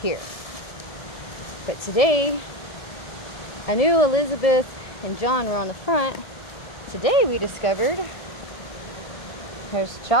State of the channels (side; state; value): right; late; 1.7 ms